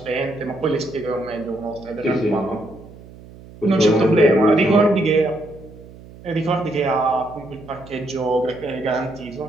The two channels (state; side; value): noise; right; hum, 19 dB below the sound